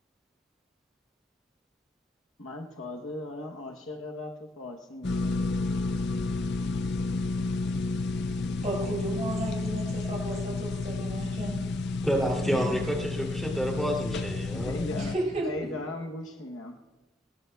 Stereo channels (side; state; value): both; normal; correlation 0.75